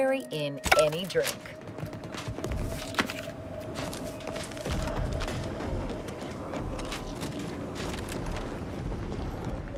in any drink.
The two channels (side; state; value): both; identical; correlation 1.00